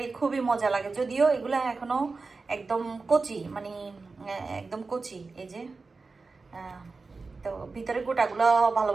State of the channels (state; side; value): quieter; left; 4.1 dB